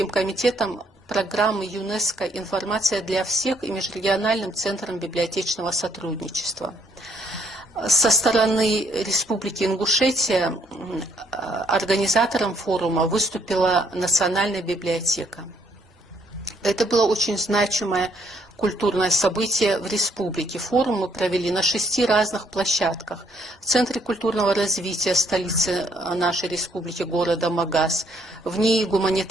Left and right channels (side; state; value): both; normal; correlation 0.68